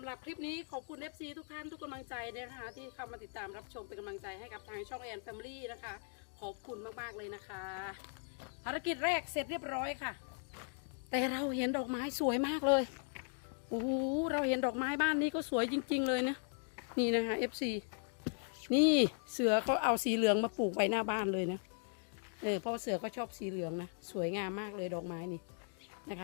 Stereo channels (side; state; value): right; silent; 52 dB below the other